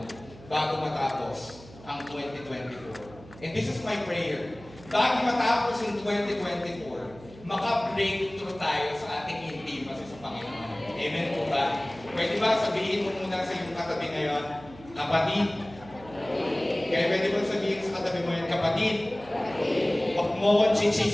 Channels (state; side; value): noise; right; hum, 20 dB below the sound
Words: bago matapos ang 2024. And this is my prayer. Bago matapos ang 2024, maka-breakthrough tayo sa ating intimacy sa Panginoon. Amen po ba? Pwede ba sabihin mo muna sa iyong katabi ngayon, kapatid? Kaya pwede mo sabihin sa katabi mo yan, kapatid, huwag mo akong